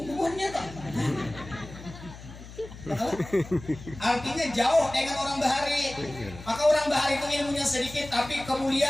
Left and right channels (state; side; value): noise; left; hum, 15 dB below the sound